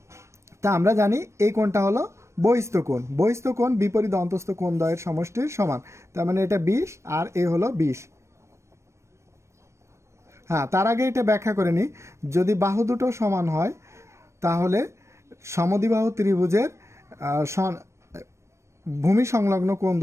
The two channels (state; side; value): late; left; 0.13 ms